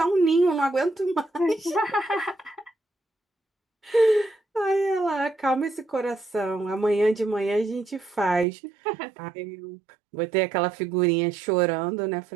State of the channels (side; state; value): left; drops out; at 8.5 s